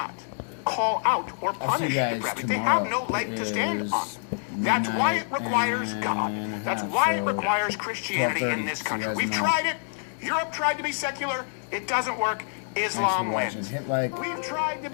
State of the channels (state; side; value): silent; right; digital silence